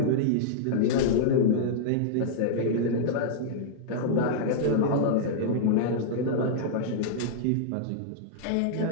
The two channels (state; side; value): different; both; correlation -0.02